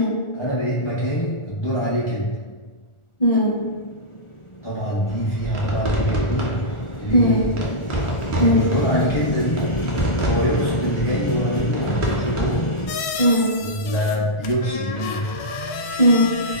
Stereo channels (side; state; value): right; late; 1.4 ms